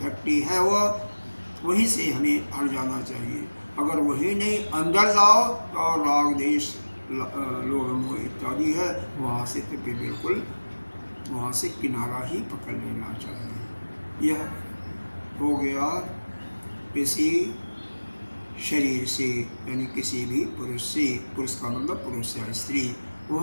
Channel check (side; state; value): both; inverted; correlation -1.00